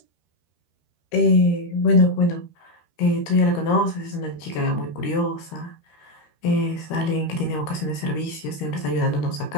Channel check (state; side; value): late; right; 13 ms